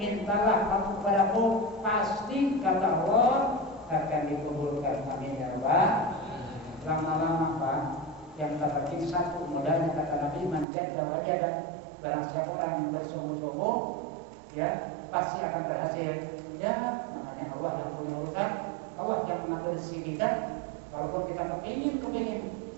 kamu kepadaku, pasti kata Allah akan dikabulkan, amin ya Allah. Lama-lama Pak, yang kata satu modalnya kata Nabi, man jadda wajada, barang siapa orang yang bersungguh-sungguh, ya pasti akan berhasil. Ya, namanya Allah yang punya urusan, Allah yang mengatur rezeki kita. Walaupun kita kepingin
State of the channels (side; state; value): left; drops out; at 10.7 s